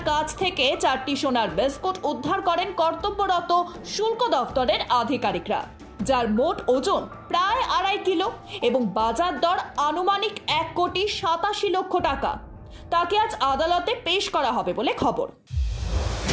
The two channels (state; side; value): identical; both; correlation 1.00